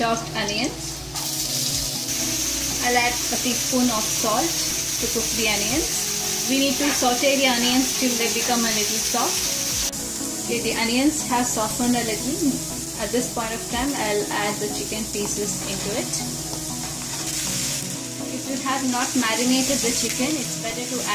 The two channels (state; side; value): identical; both; correlation 1.00